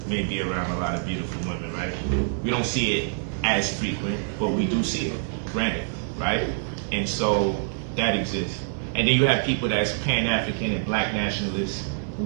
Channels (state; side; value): silent; left; 61 dB below the other